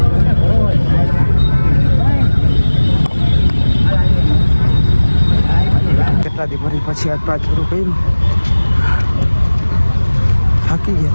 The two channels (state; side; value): inverted; both; correlation -1.00